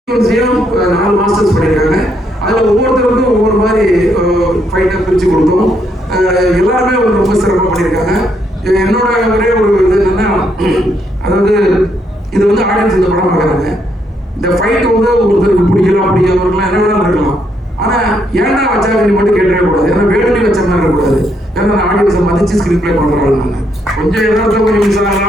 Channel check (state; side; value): normal; both; correlation 0.74